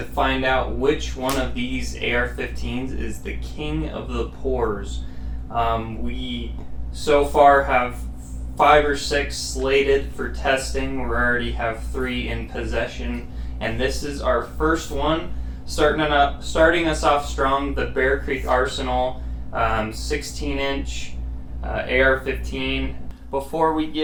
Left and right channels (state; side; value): identical; both; correlation 1.00